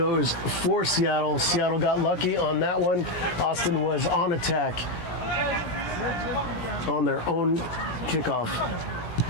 for Seattle. Seattle got lucky on that one. Austin was on attack on their own kickoff.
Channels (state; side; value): late; right; 17 ms